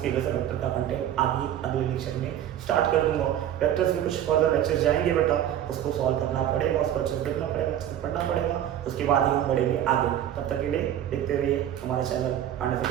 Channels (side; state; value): left; quieter; 11.0 dB